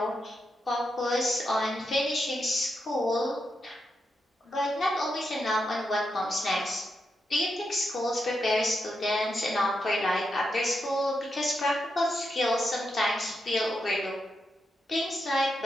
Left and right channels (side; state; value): both; normal; correlation 0.85